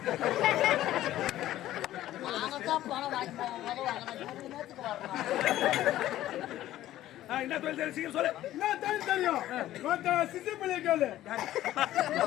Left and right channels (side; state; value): right; quieter; 13.9 dB